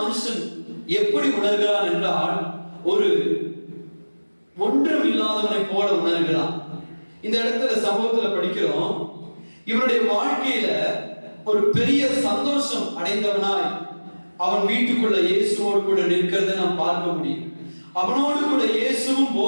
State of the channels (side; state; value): both; inverted; correlation -1.00